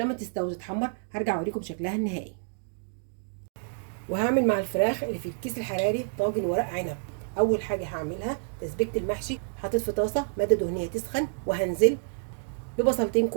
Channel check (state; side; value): silent; left; digital silence